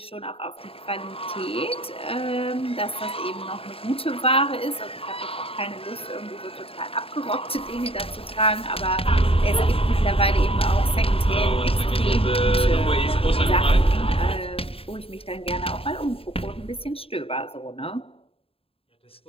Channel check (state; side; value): late; right; 0.27 ms